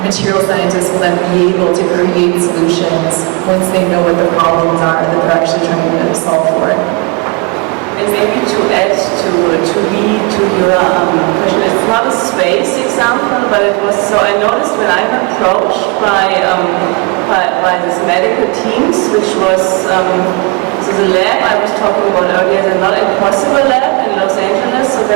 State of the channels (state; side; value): quieter; left; 29.1 dB